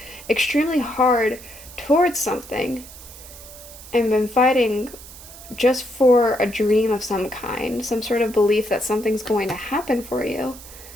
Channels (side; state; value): right; noise; hiss, 17 dB below the sound